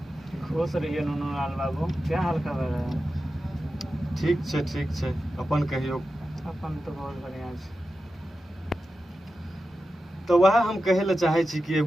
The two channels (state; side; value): normal; both; correlation 0.92